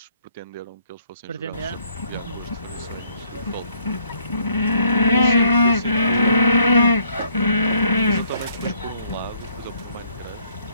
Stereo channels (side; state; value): both; inverted; correlation -0.67